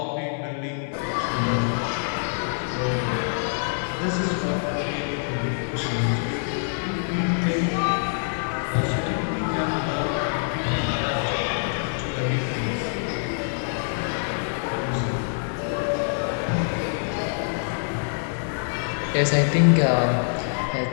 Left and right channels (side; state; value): right; silent; 62 dB below the other